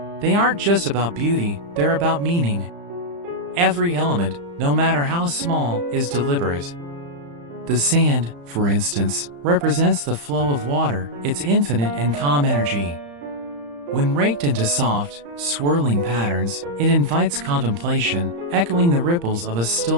They aren't just about beauty, they're about meaning. Every element, no matter how small, is deliberate. The sand, for instance, represents the flow of water, its infinite and calm energy. When raked into soft, swirling patterns, it invites contemplation, echoing the ripples of a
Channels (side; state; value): left; late; 35 ms